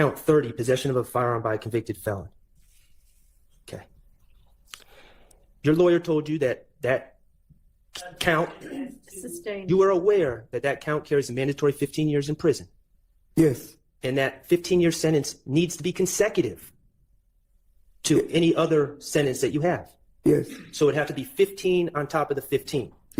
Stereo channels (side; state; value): both; identical; correlation 1.00